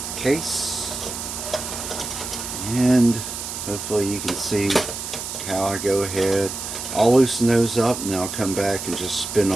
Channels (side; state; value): right; noise; hiss, 7 dB below the sound